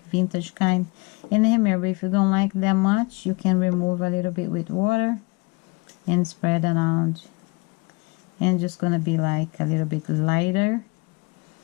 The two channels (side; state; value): right; quieter; 27.0 dB